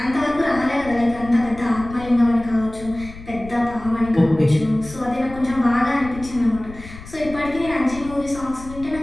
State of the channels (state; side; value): noise; left; rumble, 15 dB below the sound